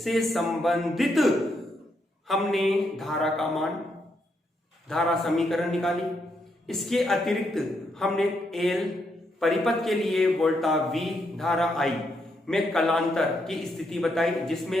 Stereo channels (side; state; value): both; normal; correlation 0.78